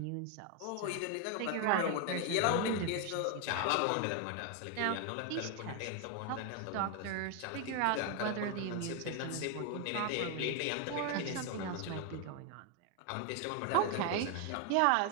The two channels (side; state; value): both; different; correlation 0.01